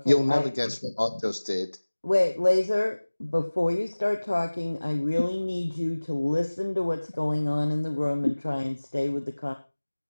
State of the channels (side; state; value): both; inverted; correlation -1.00